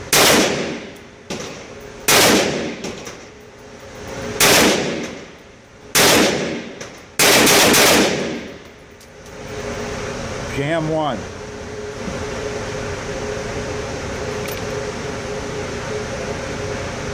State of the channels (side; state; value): both; identical; correlation 1.00